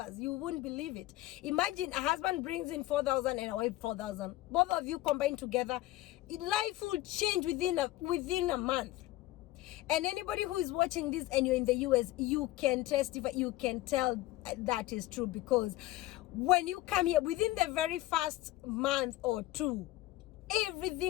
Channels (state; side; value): quieter; right; 16.8 dB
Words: You wouldn't believe it. Imagine a husband brings in 4,000 and a wife 4,000. Both of you combined together, life will change within a month. And anybody who is watching this and you're in the US, you can testify, you can tell that is true, because when you come here, within the very first month or two,